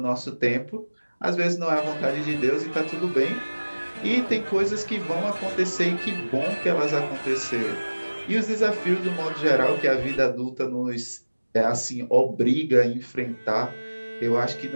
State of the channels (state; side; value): inverted; both; correlation -1.00